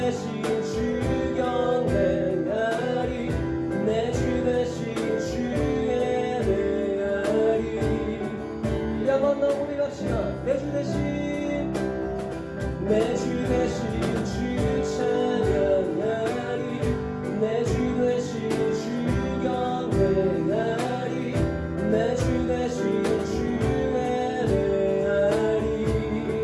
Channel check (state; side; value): identical; both; correlation 1.00